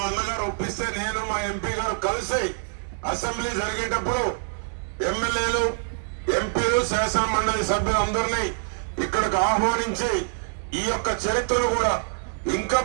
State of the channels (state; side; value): silent; left; digital silence